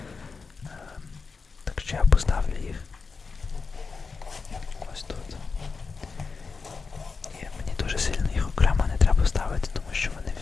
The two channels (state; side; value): quieter; right; 4.7 dB